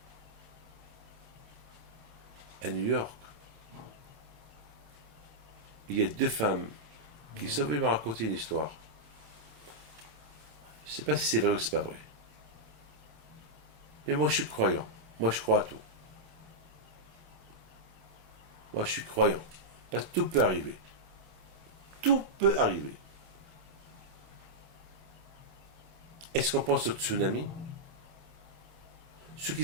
à New York. Il y a 2 femmes qui sont venues me raconter une histoire. Je ne sais pas si c'est vrai ou c'est pas vrai. Mais moi, je suis croyant. Moi, je crois à tout. Moi, je suis croyant. Parce que tout peut arriver. Tout peut arriver. Est-ce qu'on pense au tsunami? Ceux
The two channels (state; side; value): late; left; 27 ms